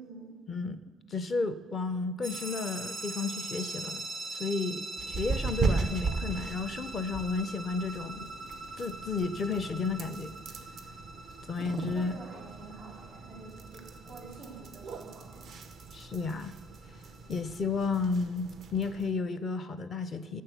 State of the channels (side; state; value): both; normal; correlation 0.60